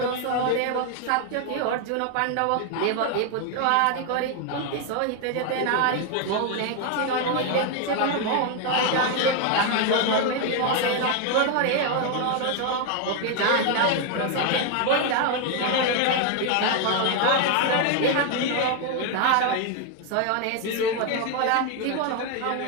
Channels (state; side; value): different; both; correlation 0.01